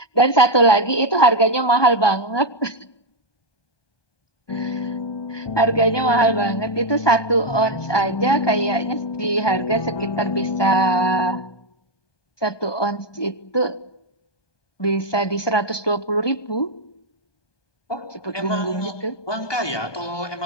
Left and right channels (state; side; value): late; right; 1.2 ms